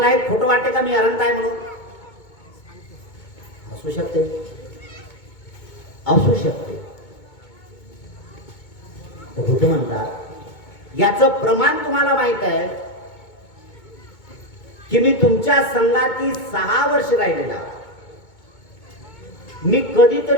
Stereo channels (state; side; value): late; right; 2.2 ms